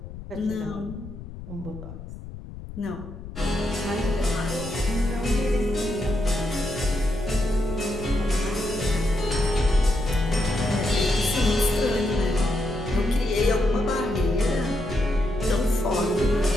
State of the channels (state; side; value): noise; left; rumble, 12 dB below the sound